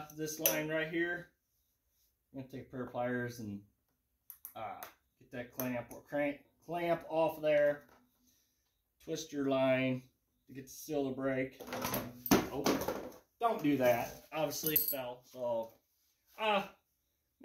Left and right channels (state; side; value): identical; both; correlation 1.00